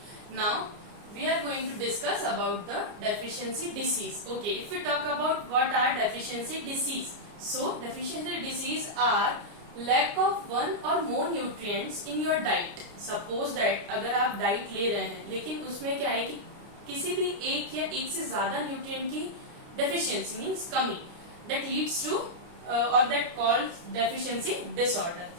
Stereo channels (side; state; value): left; late; 29 ms